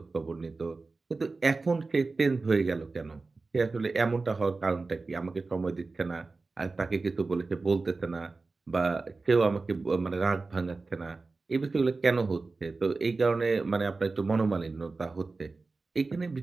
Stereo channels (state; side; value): quieter; left; 3.8 dB